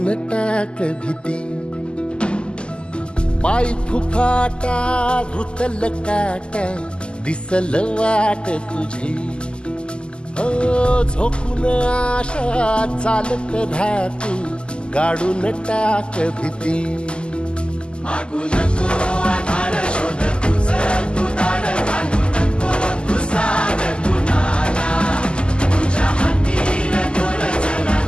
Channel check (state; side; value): late; right; 0.050 ms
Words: टाक भीती पाय फुफाटा रुतल काटा दिसल वाट तुझी हो झोकून आशा चालत राहतू गाडून टाक भीती मागू नको आधार शोध तुझं तू दाड घालू नको तू साध कुणाला तुझ्या हातीन दोर जरा